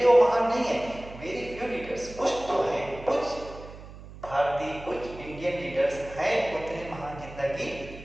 वो महान नहीं है। वेरी फ्यू लीडर्स, कुछ तो है, कुछ भारतीय, कुछ इंडियन लीडर्स हैं उतने महान जितना कि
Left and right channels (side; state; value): right; noise; hum, 16 dB below the sound